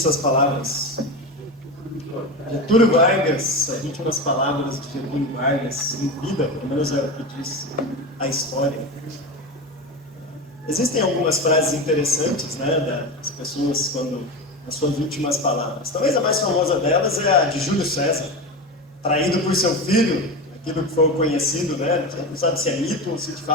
essas palavras? Getúlio Vargas, as últimas palavras de Getúlio Vargas em vida, pelo menos é o que diz a história. Existem algumas frases interessantes, né, das pessoas quando as suas últimas palavras. Talvez a mais famosa delas é a de Júlio César, traído por seu filho, aquilo que foi conhecido, né? Não sabe se é mito ou se de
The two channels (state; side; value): normal; both; correlation 0.22